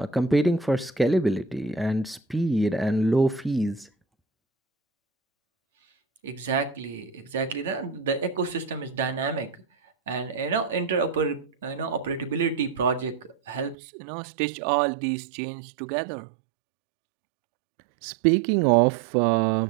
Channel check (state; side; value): drops out; left; at 13.8 s